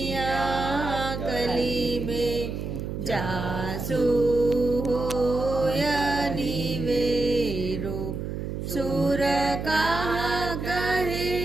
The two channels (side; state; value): right; noise; hum, 5 dB below the sound